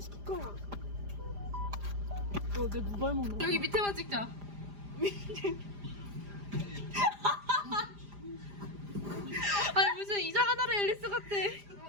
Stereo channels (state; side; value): late; left; 4.9 ms